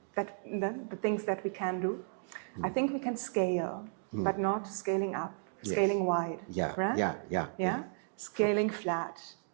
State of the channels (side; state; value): left; silent; digital silence